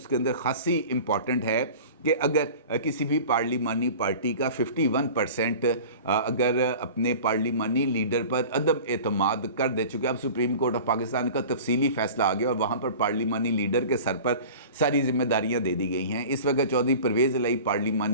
अंदर खासी इम्पॉर्टेंट है कि अगर किसी भी पार्लिमानी पार्टी का 51% अगर अपने पार्लिमानी लीडर पर अदम एतमाद कर दे, चुके अब सुप्रीम कोर्ट ऑफ पाकिस्तान का तफसीली फ़ैसला आ गया और वहाँ पर पार्लिमानी लीडर के सर पर सारी जिम्मेदारियाँ दे दी गई हैं। इस वक्त चौधरी परवेज़ इलाही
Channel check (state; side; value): inverted; both; correlation -0.39